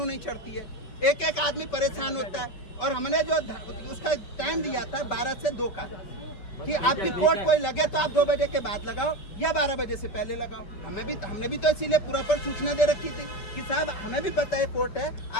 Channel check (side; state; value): right; late; 5.2 ms